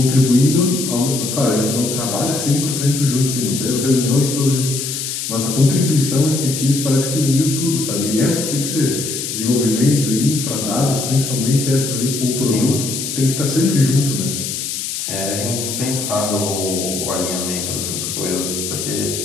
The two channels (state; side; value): noise; left; hiss, 4 dB below the sound